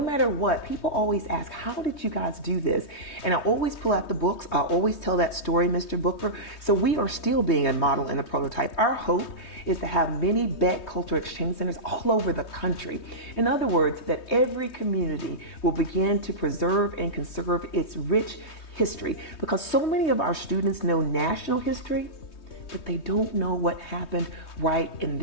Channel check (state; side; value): late; right; 3.2 ms